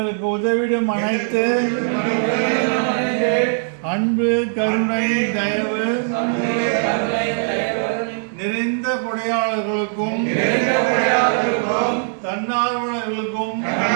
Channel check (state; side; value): silent; left; digital silence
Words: உதவிடும் அனைத்து அன்பு கருணை தயவு நிறைந்த கொடையாளர்களுக்கும் தன்னார்வலர்களுக்கும்